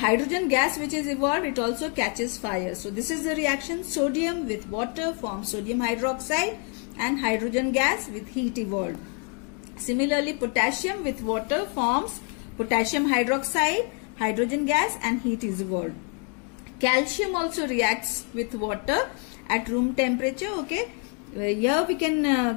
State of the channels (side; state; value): right; quieter; 37.8 dB